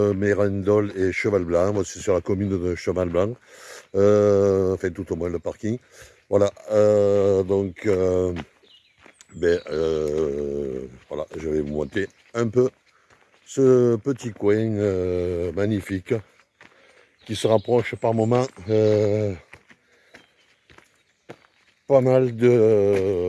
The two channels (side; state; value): both; identical; correlation 1.00